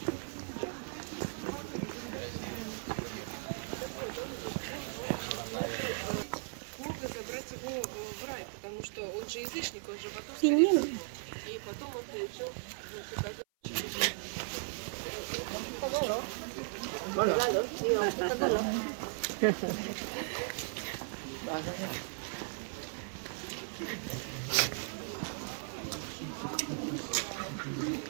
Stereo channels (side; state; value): left; silent; 53 dB below the other